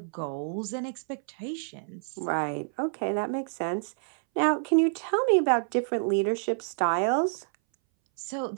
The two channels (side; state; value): left; silent; 59 dB below the other